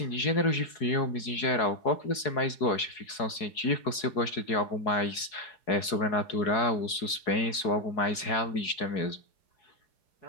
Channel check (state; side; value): late; right; 4.7 ms